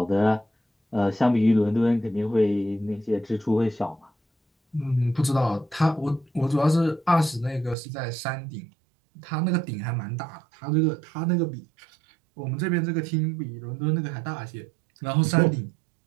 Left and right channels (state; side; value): drops out; left; at 7.8 s